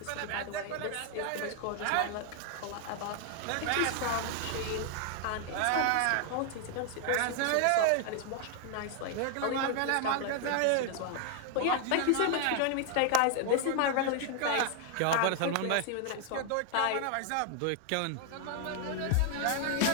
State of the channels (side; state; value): both; different; correlation 0.00